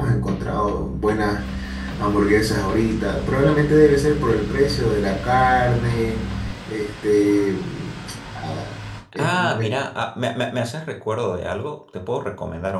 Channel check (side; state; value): both; identical; correlation 1.00